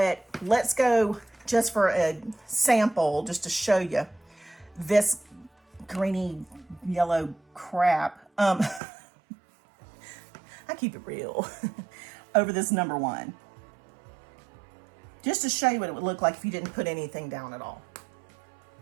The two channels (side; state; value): left; drops out; at 8.8 s